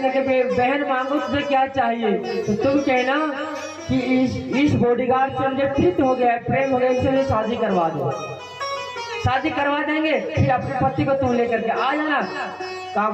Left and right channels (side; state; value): both; identical; correlation 1.00